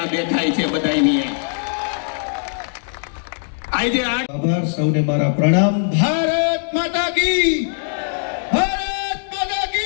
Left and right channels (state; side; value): silent; right; digital silence